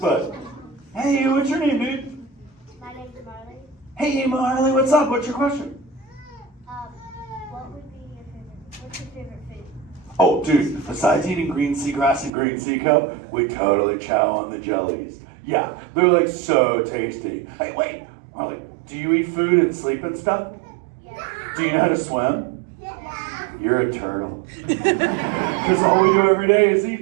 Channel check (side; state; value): left; drops out; at 12.3 s